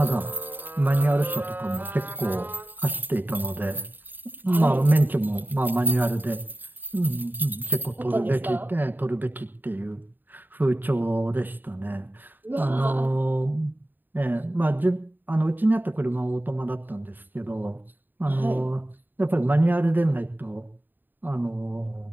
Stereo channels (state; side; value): late; left; 0.091 ms